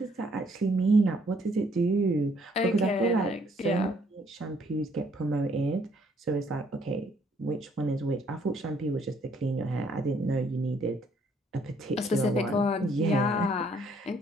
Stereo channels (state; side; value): normal; both; correlation 0.66